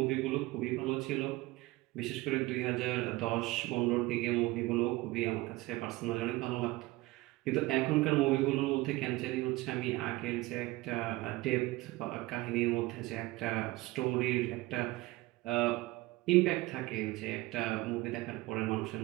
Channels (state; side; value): quieter; left; 19.9 dB